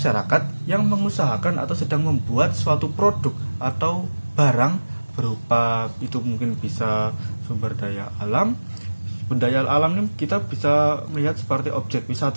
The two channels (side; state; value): both; inverted; correlation -1.00